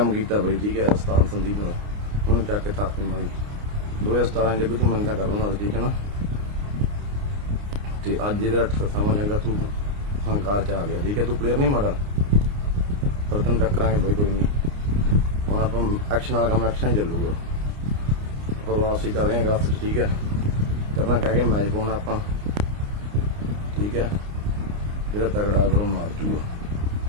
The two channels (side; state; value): left; late; 29 ms